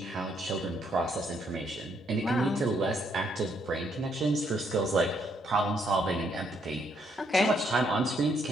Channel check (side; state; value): both; normal; correlation 0.72